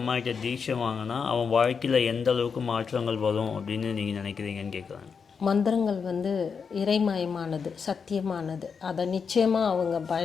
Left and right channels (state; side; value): quieter; right; 5.9 dB